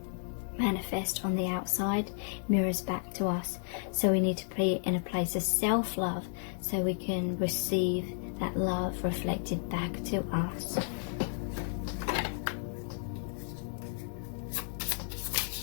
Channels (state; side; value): silent; right; digital silence